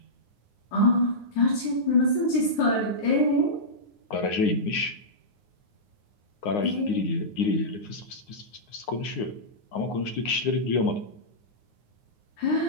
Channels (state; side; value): late; right; 9.7 ms